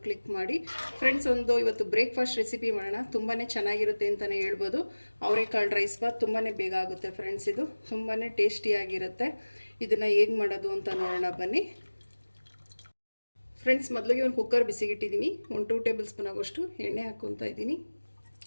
ಕ್ಲಿಕ್ ಮಾಡಿ. ಫ್ರೆಂಡ್ಸ್, ಇವತ್ತು ಬ್ರೇಕ್ಫಾಸ್ಟ್ ರೆಸಿಪಿ ಮಾಡೋಣ. ತುಂಬಾ ಚೆನ್ನಾಗಿರುತ್ತೆ ಅಂತಲೇ ಹೇಳ್ಬೋದು. ಅವರೆಕಾಳು ರೈಸ್ ಬಾತ್ ತುಂಬಾ ಬೇಗ ಆಗುತ್ತೆ ಫ್ರೆಂಡ್ಸ್. ಇದು ತುಂಬಾ ಟೇಸ್ಟಿಯಾಗಿರುತ್ತೆ. ಇದನ್ನು ಹೇಗೆ ಮಾಡೋದು ಅಂತ ನೋಡೋಣ ಬನ್ನಿ ಫ್ರೆಂಡ್ಸ್. ಮೊದಲಿಗೆ ಒಂದು ಕುಕ್ಕರ್ ಬಿಸಿಗಿಟ್ಟಿದ್ದೀನಿ. ಒಂದು 2 ಟೇಬಲ್ ಸ್ಪೂನ್ ಆಗೋಷ್ಟು ಎಣ್ಣೆ ಹಾಕ್ಕೊತಾ ಇದ್ದೀನಿ.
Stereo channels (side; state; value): both; inverted; correlation -1.00